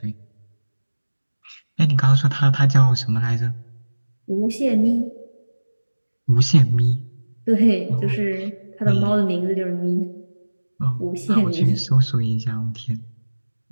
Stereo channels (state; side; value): inverted; both; correlation -1.00